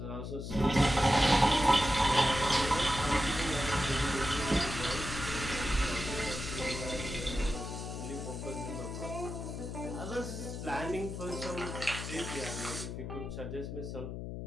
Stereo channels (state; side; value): noise; left; hum, 7 dB below the sound